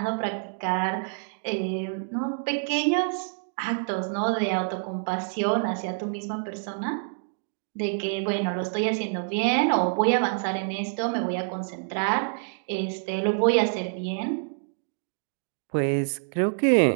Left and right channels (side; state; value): left; silent; digital silence